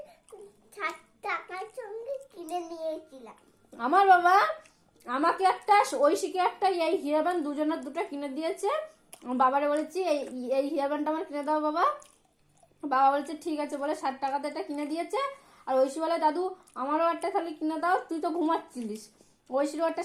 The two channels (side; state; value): both; identical; correlation 1.00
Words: 60 টাকার সঙ্গে কিনে নিয়েছিলাম। আমার বাবা আমাকে একটা, ঐশীকে একটা এই হেয়ার ব্যান্ড দুজনের দুটো কিনে দিয়েছে। আমার বাবারে বলেছি এই হেয়ার ব্যান্ডটা আমার কিনে দাও বাবা। বাবা বলেছে ঠিক আছে বলে 60 টাকাতে এটা কিনে দিয়েছে। আর ঐশী বলে দাদু আমারও একটা তাহলে কিনে দাও, তুই তো ঘুমাচ্ছিলিস। ঐশীরও একটা